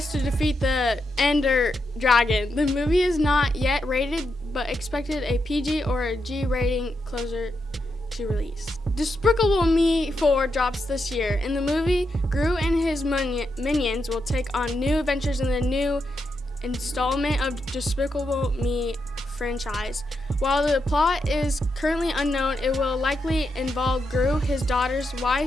to defeat the Ender Dragon. The movie is not yet rated, but expected a PG or a G rating closer to release. Despicable Me 4 drops this year. In the movie, Gru and his minions will take on new adventures in the new installment of Despicable Me franchise. While the plot is currently unknown, it will likely involve Gru, his daughter's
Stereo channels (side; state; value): both; normal; correlation 0.84